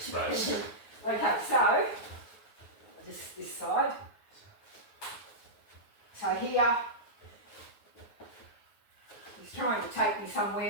space. Okay, so just this side. So here, he's trying to take me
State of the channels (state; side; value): late; right; 9.4 ms